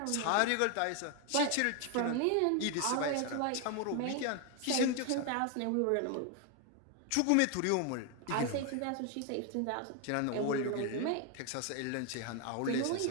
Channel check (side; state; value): both; different; correlation 0.01